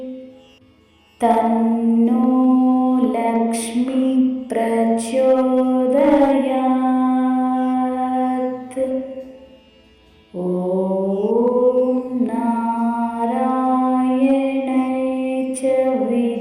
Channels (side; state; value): both; identical; correlation 1.00